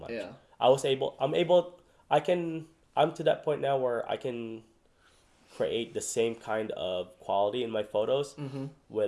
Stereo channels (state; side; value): identical; both; correlation 1.00